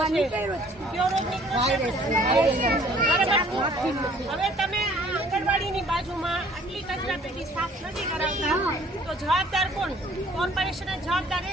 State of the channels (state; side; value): normal; both; correlation 0.56